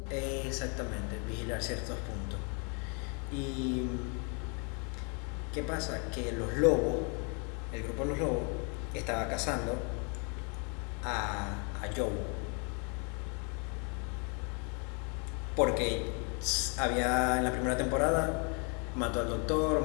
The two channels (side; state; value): right; quieter; 36.4 dB